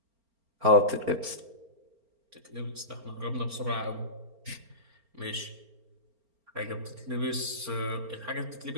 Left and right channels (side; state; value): left; late; 4.4 ms